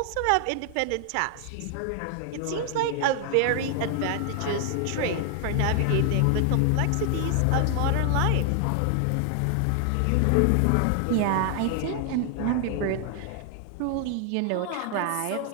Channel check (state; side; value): different; both; correlation 0.00